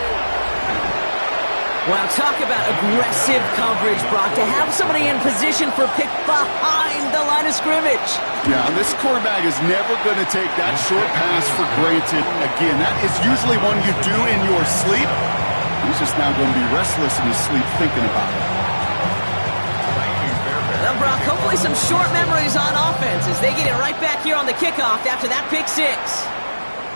Wow, talk about aggressive coverage, Brock, to have somebody in position for pick behind the line of scrimmage. Yeah, this quarterback is never going to take that short pass for granted again. That is usually one you do in your sleep. He's just now going to be restless in his sleep thinking about it. Well, Brock, hopefully some short memories on offense as they get it right back here on the kickoff after that pick six.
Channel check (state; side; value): inverted; both; correlation -1.00